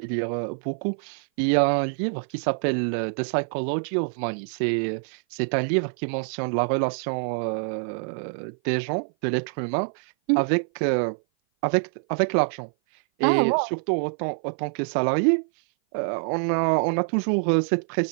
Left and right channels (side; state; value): left; silent; 57 dB below the other